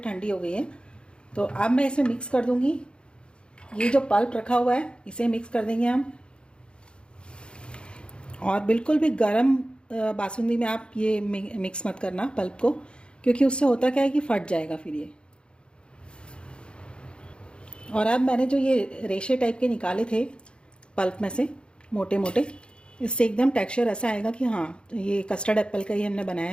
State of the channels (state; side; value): late; right; 0.054 ms